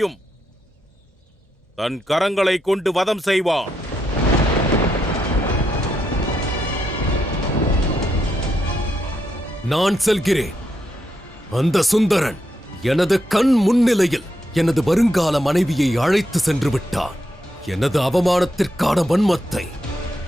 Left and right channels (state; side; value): normal; both; correlation 0.81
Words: தன் கரங்களை கொண்டு வதம் செய்வான். நான் செல்கிறேன். அந்த சுந்தரன் எனது கண் முன்னிலையில் எனது வருங்கால மனைவியை அழைத்து சென்று விட்டான். எனது அவமானத்திற்கான வன்மத்தை